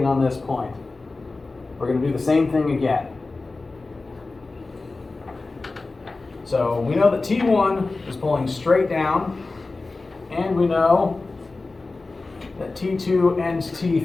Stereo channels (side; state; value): right; quieter; 3.5 dB